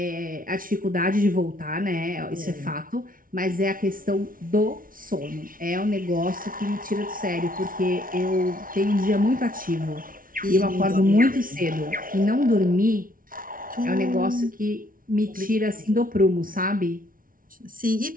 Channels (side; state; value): left; late; 0.40 ms